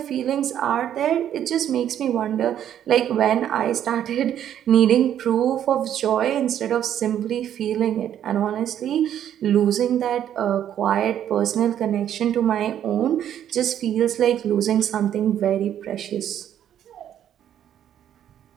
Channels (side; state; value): left; quieter; 10.4 dB